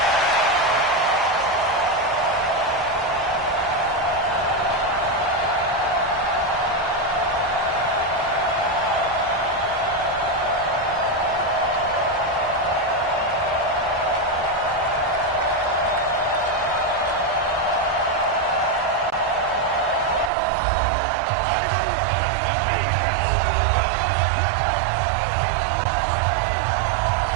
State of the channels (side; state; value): left; drops out; at 20.3 s